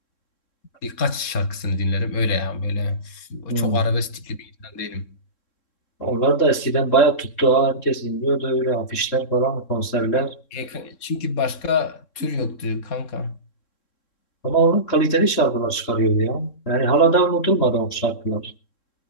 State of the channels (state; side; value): late; right; 3.7 ms